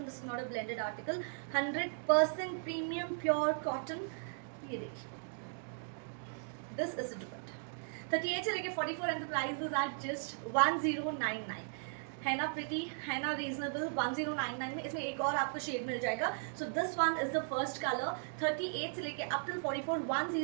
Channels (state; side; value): silent; left; digital silence